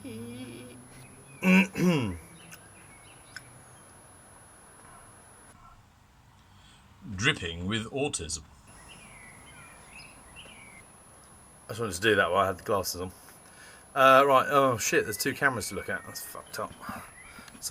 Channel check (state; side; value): identical; both; correlation 1.00